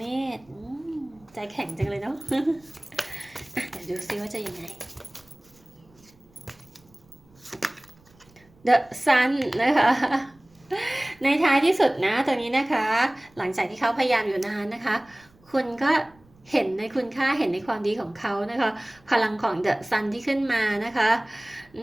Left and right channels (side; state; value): right; noise; rumble, 30 dB below the sound